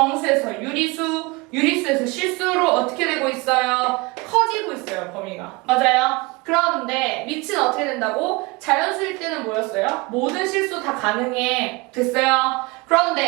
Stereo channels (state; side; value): quieter; left; 25.3 dB